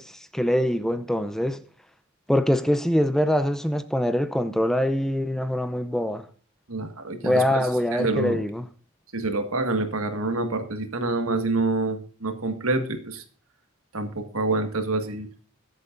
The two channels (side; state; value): both; normal; correlation 0.63